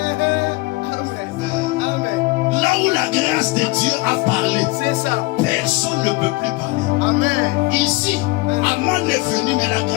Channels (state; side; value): quieter; right; 23.0 dB